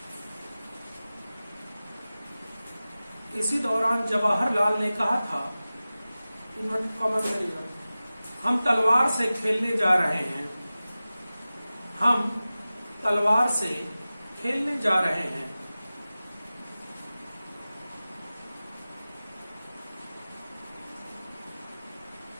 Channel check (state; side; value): inverted; both; correlation -0.96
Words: इसी दौरान जवाहरलाल ने कहा था, हम तलवार से खेलने जा रहे हैं। हम तलवार से खेलने जा रहे हैं।